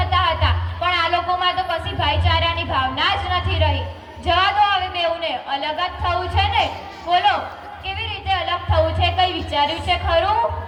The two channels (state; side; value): identical; both; correlation 1.00